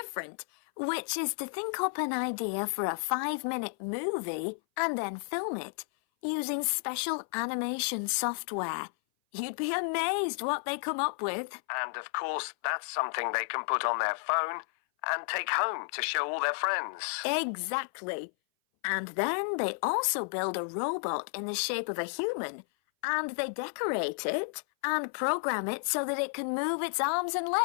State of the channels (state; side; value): silent; right; 56 dB below the other